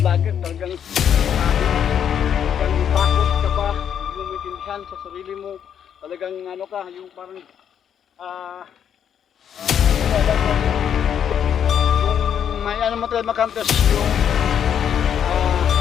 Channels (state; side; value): quieter; right; 8.7 dB